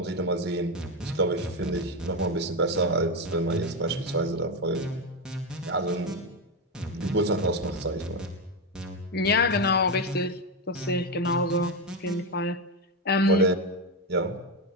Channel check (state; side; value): normal; both; correlation 0.11